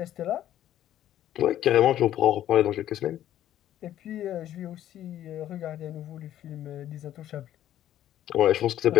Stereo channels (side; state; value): right; quieter; 12.0 dB